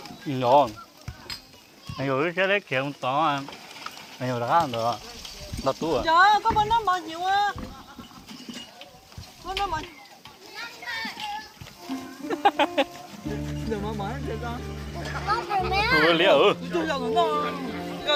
ngon anh rồi cái đấy kiểu to anh rồi đã ăn được đặt tủ à trời ơi có bên đó bao nhiêu á bên đó bao đừng mà mở cho con ủa liệu tôi giờ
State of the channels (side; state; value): both; identical; correlation 1.00